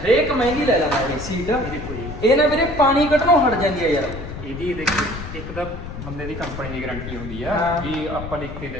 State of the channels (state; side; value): noise; left; rumble, 9 dB below the sound